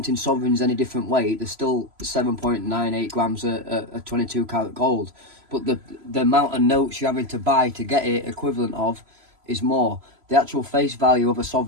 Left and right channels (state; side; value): late; left; 3.0 ms